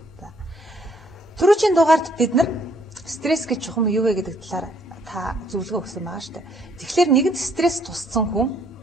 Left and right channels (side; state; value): both; normal; correlation 0.66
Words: Түрүүчийн дугаард бид нар стресс гэж чухам юу вэ гэдэг талаар та зөвлөгөө өгсөн байгаа шүү дээ. Тэгэхээр нэгэнт стресс тусцсан хүн